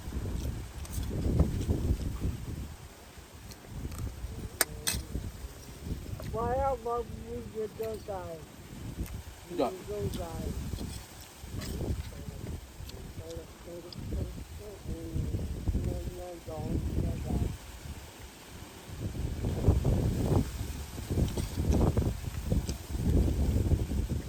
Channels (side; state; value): both; identical; correlation 1.00